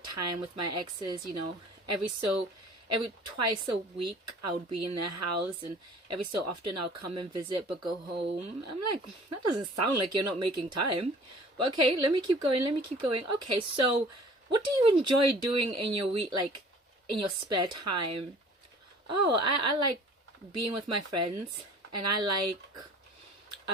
time with my exes, every twice a week I would be in their house, and every so often I'll come and visit but go home. I'm like, that doesn't sound like you're not making time. But okay, let me keep going. Okay, so what do you enjoy doing in your week, like in your spare time? Oh, I like being with my friends, and I like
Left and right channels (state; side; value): normal; both; correlation 0.49